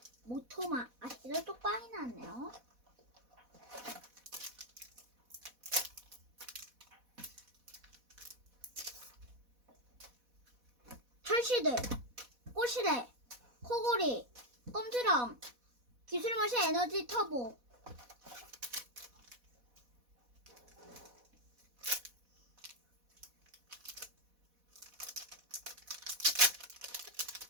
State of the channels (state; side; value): late; left; 4.1 ms